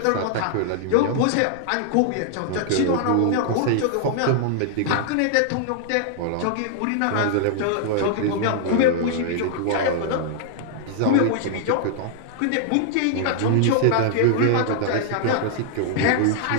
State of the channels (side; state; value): both; different; correlation -0.01